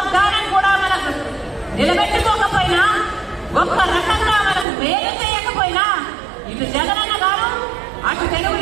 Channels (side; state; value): left; drops out; at 4.7 s